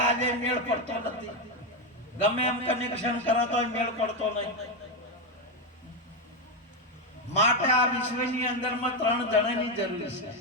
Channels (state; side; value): normal; both; correlation 0.08